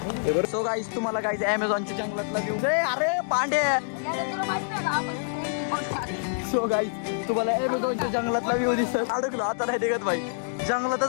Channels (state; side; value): silent; right; digital silence